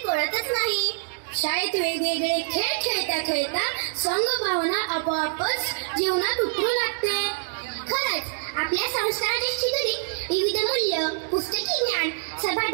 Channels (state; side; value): silent; left; 60 dB below the other